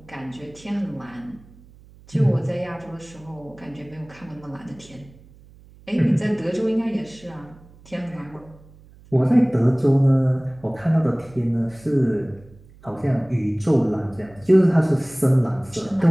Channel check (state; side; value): noise; right; hum, 24 dB below the sound